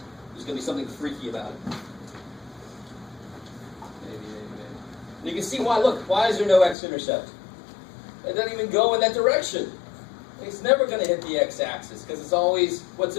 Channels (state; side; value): drops out; right; at 6.8 s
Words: There's going to be something freaky about it. Maybe. And you can see why. Look, why is there no x-intercept? It doesn't even go in that direction. It's never going to hit the x-axis because it's always,